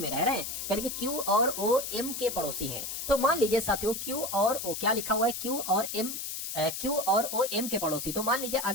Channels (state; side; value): noise; left; hiss, 5 dB below the sound